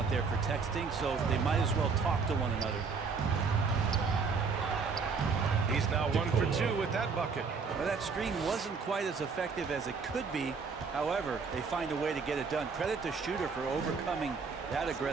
there for texting, so they might as well talk to one another. He's now 1 for 2 with that bucket. Well, that screen wasn't quite as effective as it could be. However, they find a way to get it done. Credit the shooter for overcoming that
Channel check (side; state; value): left; quieter; 5.1 dB